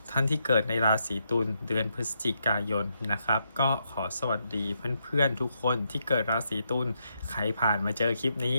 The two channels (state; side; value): inverted; both; correlation -0.80